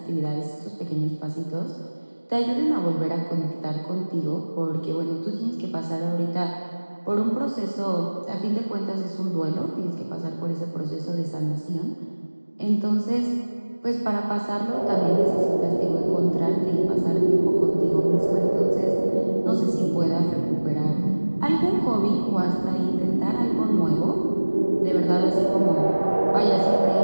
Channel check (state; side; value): inverted; both; correlation -1.00